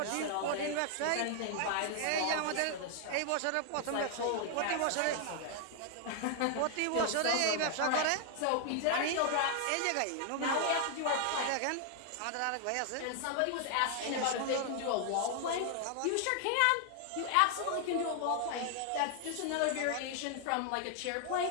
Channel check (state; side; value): different; both; correlation 0.00